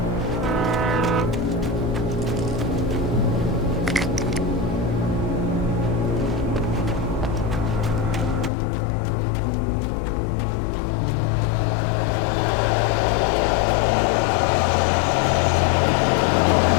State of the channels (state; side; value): drops out; right; at 8.5 s